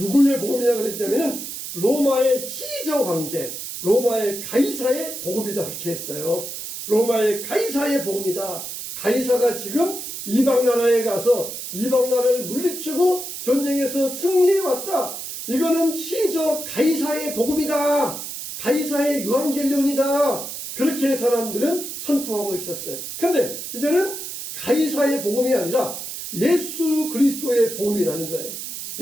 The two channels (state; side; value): noise; right; hiss, 8 dB below the sound